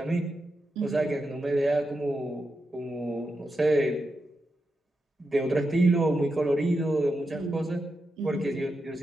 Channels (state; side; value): normal; both; correlation 0.87